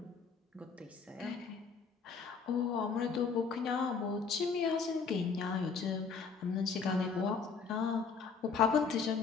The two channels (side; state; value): right; quieter; 5.4 dB